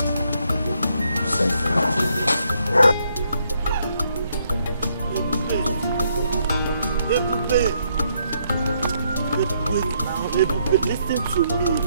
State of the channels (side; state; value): both; inverted; correlation -0.74